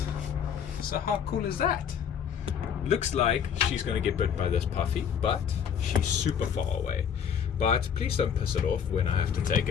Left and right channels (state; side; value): quieter; right; 7.8 dB